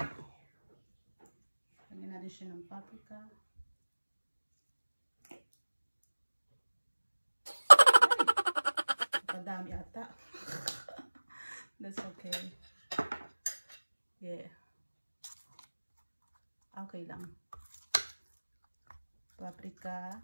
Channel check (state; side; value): inverted; both; correlation -1.00